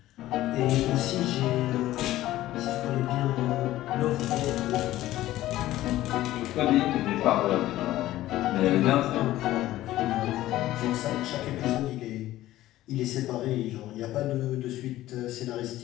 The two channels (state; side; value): quieter; right; 15.1 dB